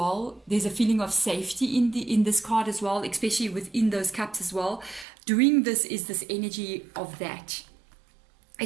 There's a feeling of safety in this card as well, especially within those cups as well. Doing this is this energy of that.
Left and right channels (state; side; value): drops out; left; at 5.1 s